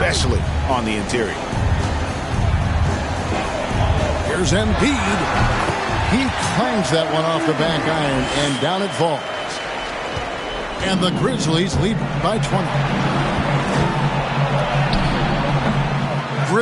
on the interior. Here's Embiid. He clangs that one off the back iron, and down it falls. And the Grizzlies lead by 20.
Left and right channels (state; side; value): identical; both; correlation 1.00